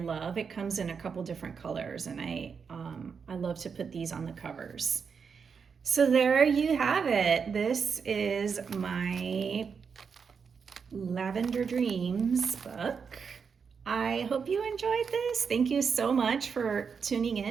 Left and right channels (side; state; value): left; quieter; 6.0 dB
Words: It comes in a couple different colors, and I love to put these on the covers. So there you have it. This is my Lavender Dreams book. I hope you enjoyed this. Thank you so much for tuning